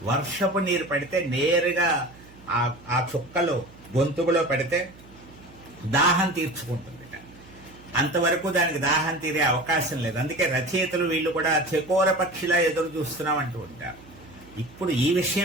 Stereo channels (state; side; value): noise; right; hum, 23 dB below the sound